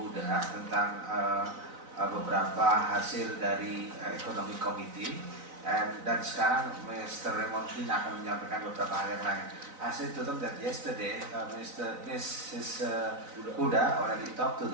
Huda tentang beberapa hasil dari Economic Committee. Dan sekarang Mr. Raymond Green akan menyampaikan beberapa hal yang lain. I said to them that yesterday Mrs. Huda already talked to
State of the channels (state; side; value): late; left; 4.0 ms